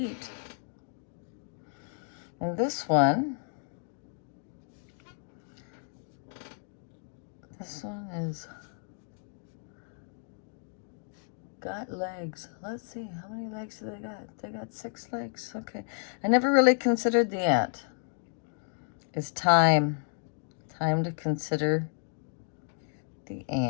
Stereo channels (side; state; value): right; silent; 56 dB below the other